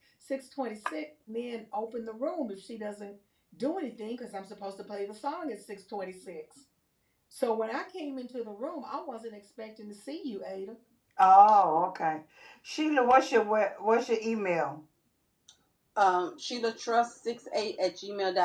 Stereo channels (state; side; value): identical; both; correlation 1.00